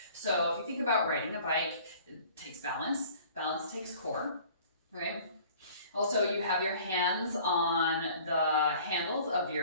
So if you think about riding a bike, it takes balance. Balance takes core, right? Also, you have your hands on the handles of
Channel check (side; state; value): both; inverted; correlation -0.50